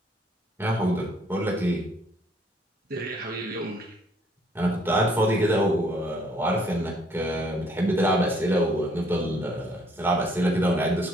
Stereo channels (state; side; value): normal; both; correlation 0.63